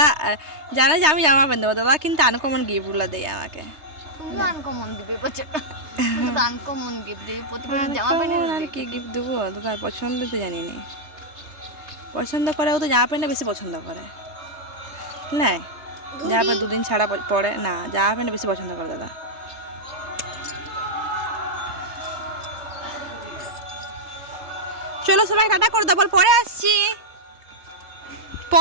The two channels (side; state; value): left; late; 3.2 ms